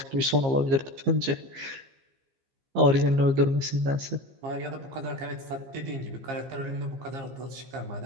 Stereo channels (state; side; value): late; left; 15 ms